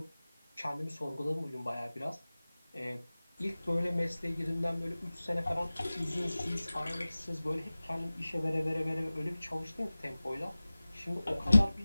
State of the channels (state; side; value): inverted; both; correlation -0.98